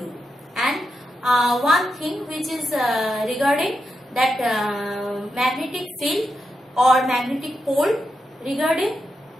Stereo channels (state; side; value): normal; both; correlation 0.86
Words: and one thing which is regarding that magnetic field or magnetic pole regarding